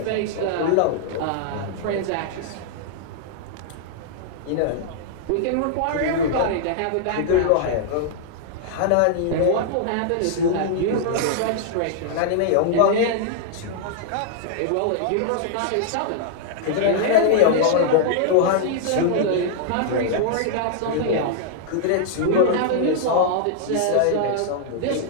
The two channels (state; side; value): different; both; correlation -0.01